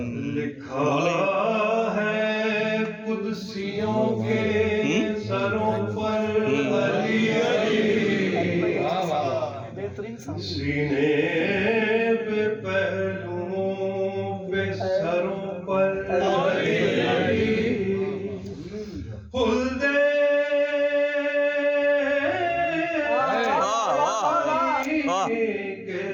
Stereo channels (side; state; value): both; identical; correlation 1.00